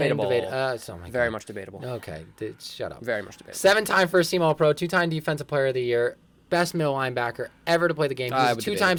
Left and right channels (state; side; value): identical; both; correlation 1.00